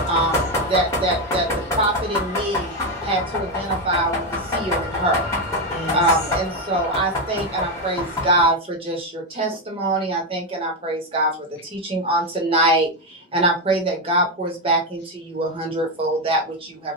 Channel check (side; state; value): both; normal; correlation 0.08